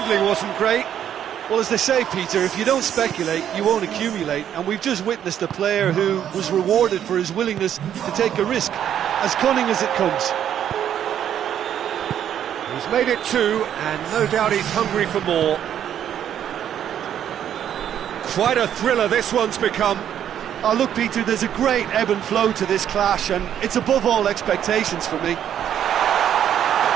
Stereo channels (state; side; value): quieter; left; 9.9 dB